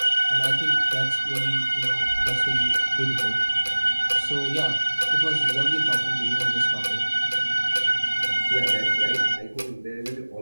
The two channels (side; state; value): both; inverted; correlation -1.00